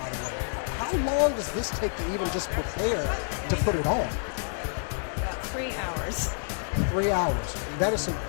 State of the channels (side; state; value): right; silent; digital silence